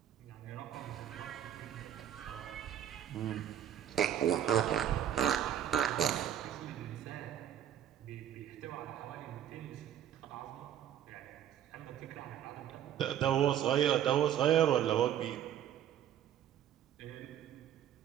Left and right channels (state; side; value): quieter; left; 10.4 dB